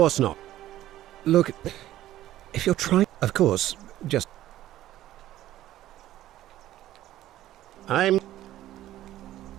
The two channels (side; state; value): left; quieter; 13.9 dB